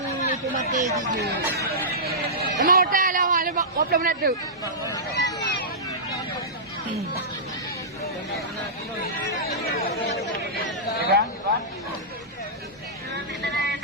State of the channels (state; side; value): normal; both; correlation -0.16